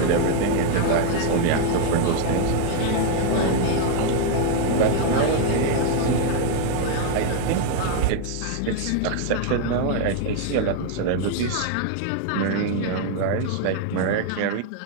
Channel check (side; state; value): both; different; correlation 0.00